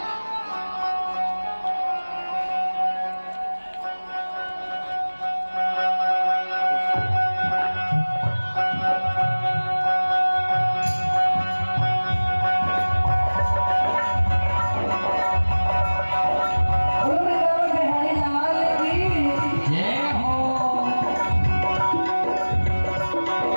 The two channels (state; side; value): inverted; both; correlation -1.00